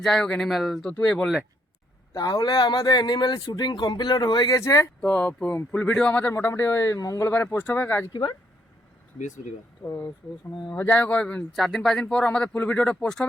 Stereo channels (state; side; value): normal; both; correlation 0.72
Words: যাই হোক অ্যানিমেল তো তুই বললে। তাহলে আমাদের অ্যানিমেল শুটিং কমপ্লিট হয়ে গেছে। তো ফুল ভিডিও আমাদের মোটামুটি ওই মঙ্গলবারে পোস্ট হবে। আজ কি বার? বৃহস্পতিবার। তো যাই হোক 4 দিন 5 দিন পর আমাদের ফুল ভিডিওটা পোস্ট